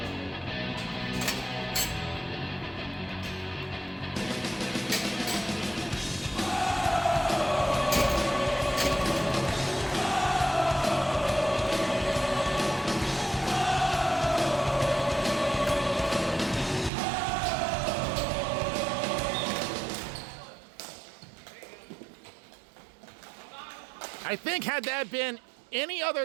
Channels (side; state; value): left; drops out; at 16.9 s